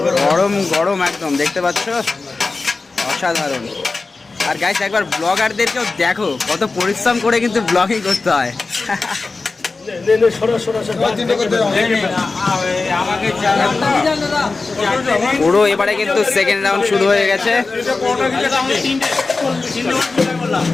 গরম গরম একদম দেখতে পাচ্ছ, অসাধারণ। আর গাইস একবার ব্লগারদেরকেও দেখো কত পরিশ্রম করে কিন্তু ব্লগিং করতে হয়। পুরো এবারে কিন্তু সেকেন্ড রাউন্ড শুরু হয়ে গেছে।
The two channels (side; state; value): right; quieter; 3.8 dB